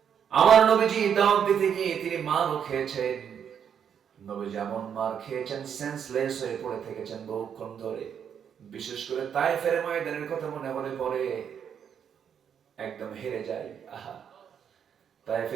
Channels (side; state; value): left; quieter; 8.1 dB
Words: আমার নবীজি দাওয়াত দিতে গিয়ে তিনি মারও খেয়েছেন। নবীজি এমন মার খেয়েছেন, সেন্সলেস হয়ে পড়ে থেকেছেন বহুক্ষণ ধরে। বিশেষ করে তায়েফের ময়দানের কথা মনে হলে পরে একদম হেরে যাই। আহা,